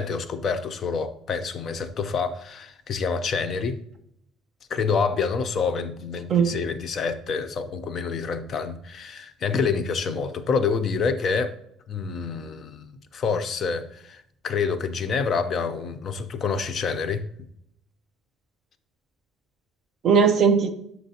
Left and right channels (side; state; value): both; normal; correlation 0.51